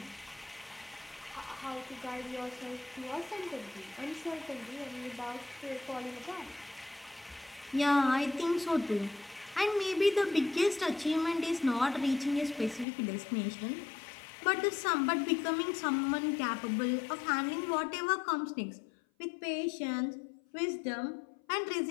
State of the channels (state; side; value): drops out; right; at 12.9 s